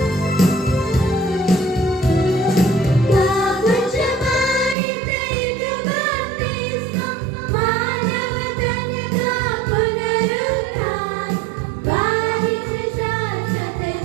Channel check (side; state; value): left; drops out; at 4.8 s